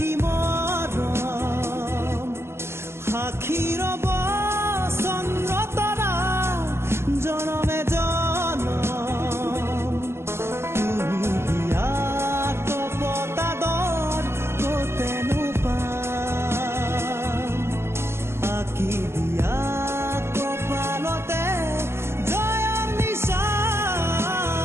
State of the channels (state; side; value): late; left; 0.12 ms